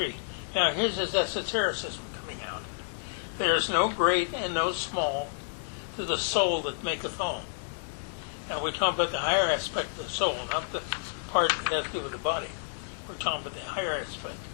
now here's his esotericism coming out. There is no great and no small to the soul that maketh all. Now we're talking about the higher aspect of the soul, not the part that has to do with the body. We're talking about the higher aspect,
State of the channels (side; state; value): right; silent; 58 dB below the other